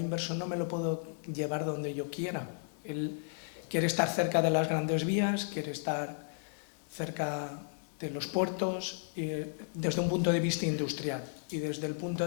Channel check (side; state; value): right; silent; digital silence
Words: inversor no me lo puedo llevar donde yo quiera. Él quiere estar cerca de las grandes vías, quiere estar cerca de los puertos, desde un punto de vista industrial, y desde el punto